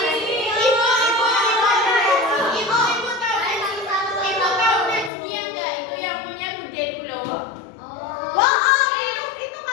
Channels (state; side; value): drops out; right; at 5.1 s